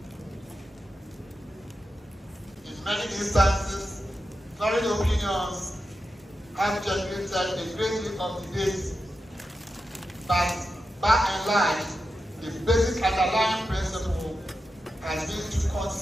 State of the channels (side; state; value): both; normal; correlation 0.90